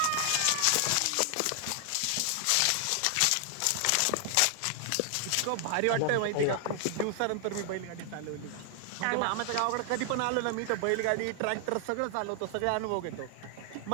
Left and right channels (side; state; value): both; different; correlation 0.00